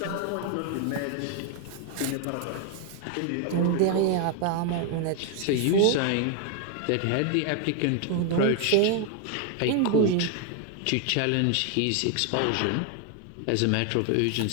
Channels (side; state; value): both; different; correlation 0.01